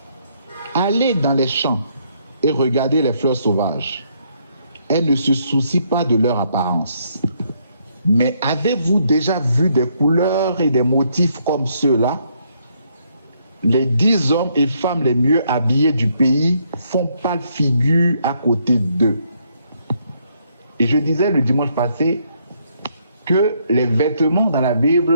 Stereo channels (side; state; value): both; inverted; correlation -0.72